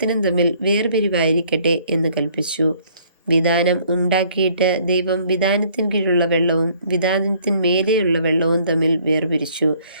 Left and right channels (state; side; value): inverted; both; correlation -0.61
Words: തമ്മിൽ വേർപിരിവായിരിക്കട്ടെ എന്ന് കൽപ്പിച്ചു. വിതാനം ഉണ്ടാക്കിയിട്ട് ദൈവം വിതാനത്തിൻ കീഴുള്ള വെള്ളവും വിതാനത്തിന്മേലെയുള്ള വെള്ളവും തമ്മിൽ വേർപിരിച്ചു.